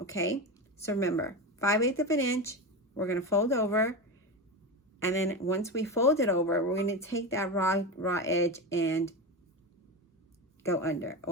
So remember, 5/8 of an inch, we're going to fold over, and then once we fold it over, we're going to take that raw edge and go under.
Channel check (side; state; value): both; normal; correlation 0.20